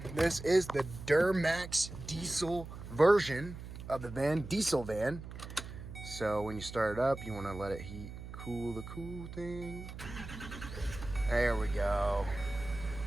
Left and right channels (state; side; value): noise; right; hum, 11 dB below the sound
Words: This is the DURAMAX diesel version of the van, diesel van. So when you start it up, you want to let it cool the cool thing. There we go.